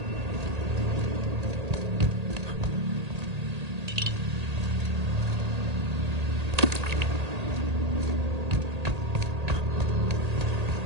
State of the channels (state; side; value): late; left; 1.8 ms